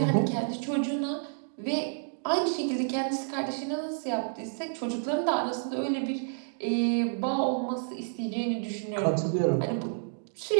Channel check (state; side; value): silent; left; digital silence